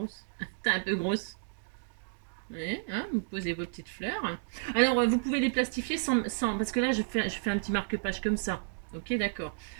T'es un peu grosse. Ouais, hein, vous posez vos petites fleurs. Alors, vous pouvez les plastifier sans parce que là, je fais un petit marque-page comme ça. Ok, d'accord.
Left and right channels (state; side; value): silent; left; digital silence